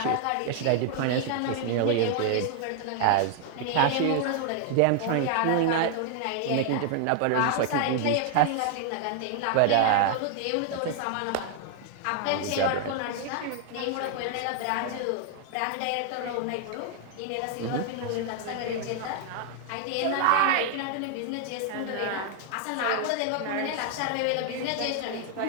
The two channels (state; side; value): different; both; correlation 0.00